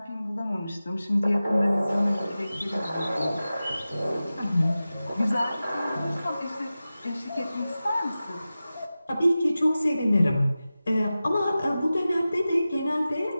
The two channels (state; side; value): inverted; both; correlation -0.95